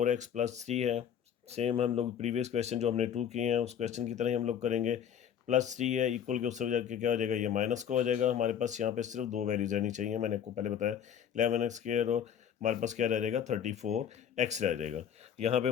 + 3 है। सेम हम लोग प्रीवियस क्वेश्चन जो हमने 2 किए हैं उस क्वेश्चन की तरह ही हम लोग करेंगे। +3 है, इक्वल के उससे जाके क्या हो जाएगा, ये माइनस का हो जाएगा। हमारे पास यहाँ पे सिर्फ दो वैल्यूज रहनी चाहिए, मैंने आपको पहले बताया 11x² और हमारे पास क्या रह जाएगा, 34x रह जाएगा। यहाँ पे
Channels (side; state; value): right; quieter; 8.8 dB